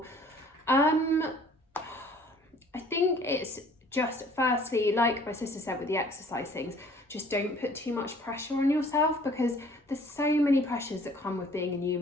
I think it's just, firstly, like my sister said with the exercise things, just don't put too much pressure on yourself, because there's so many pressures that come with being a new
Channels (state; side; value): normal; both; correlation 0.54